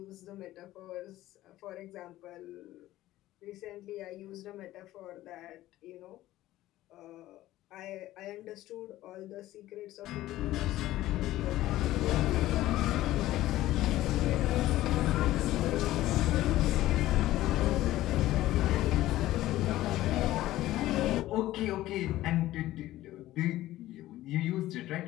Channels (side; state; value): right; quieter; 15.4 dB